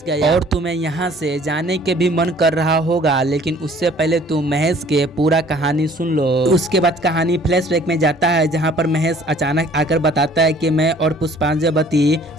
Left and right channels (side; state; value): both; normal; correlation 0.54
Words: गया और तुम्हें यहाँ से जाने के भी मन कर रहा होगा, लेकिन उससे पहले तुम महेश के पूरा कहानी सुन लो। उसके बाद कहानी फ्लैशबैक में जाता है जहाँ पर महेश अचानक आकर बताता है कि मैं और पुष्पांजलि